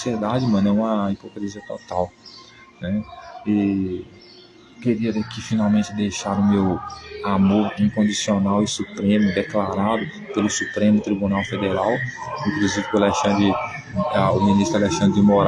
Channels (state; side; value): identical; both; correlation 1.00